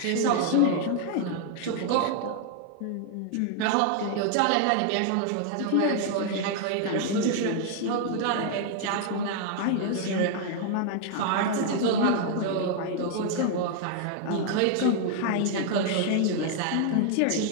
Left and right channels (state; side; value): different; both; correlation 0.00